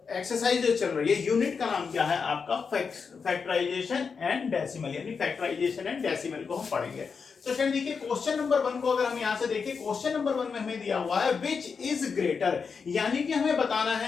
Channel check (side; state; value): right; quieter; 5.6 dB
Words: एक्सरसाइज जो चल रही है यूनिट का नाम क्या है आपका फैक्टराइजेशन एंड डेसिमल, यानी फैक्टराइजेशन एंड डेसिमल को हम पढ़ेंगे। तो स्टूडेंट देखिए क्वेश्चन नंबर 1 को अगर हम यहां से देखें, क्वेश्चन नंबर 1 में हमें दिया हुआ है विच इज ग्रेटर, यानी कि हमें बताना